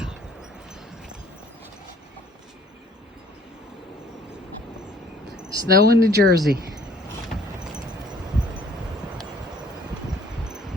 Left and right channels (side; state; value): both; normal; correlation 0.57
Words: Snow in New Jersey.